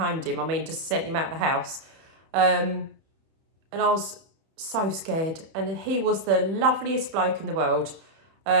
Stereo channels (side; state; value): left; late; 31 ms